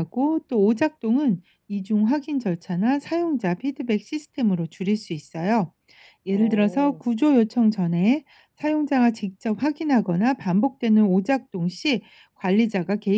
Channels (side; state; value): both; identical; correlation 1.00